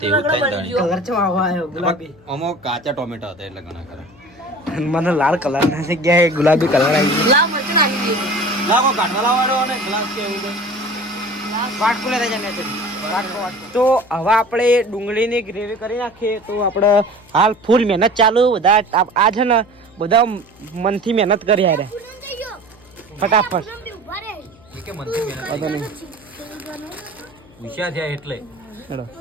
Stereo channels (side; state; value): left; noise; hum, 26 dB below the sound